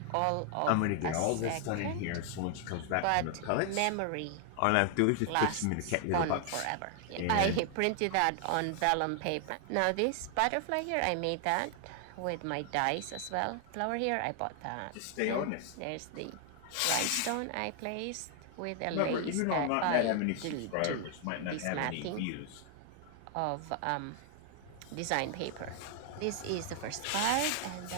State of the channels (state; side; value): different; both; correlation 0.00